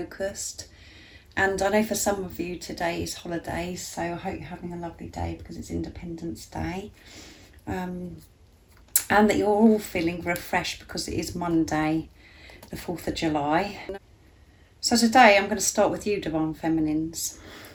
And I know for some of you today is holidays, so I hope you're having a lovely day because it's Independence Day. And that you're all feeling refreshed because it is Monday, the 4th of July. So today I'm going to start with you, Divine Feminines.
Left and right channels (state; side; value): identical; both; correlation 1.00